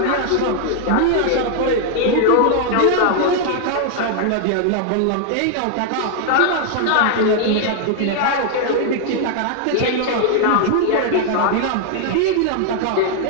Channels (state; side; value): different; both; correlation 0.00